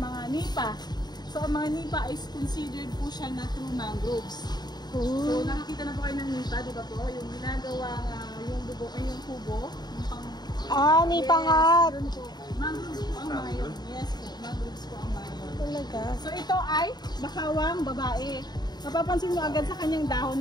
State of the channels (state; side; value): late; right; 0.20 ms